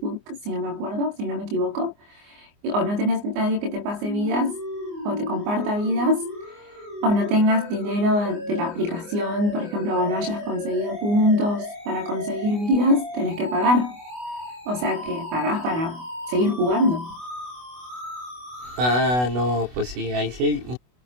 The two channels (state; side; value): late; left; 24 ms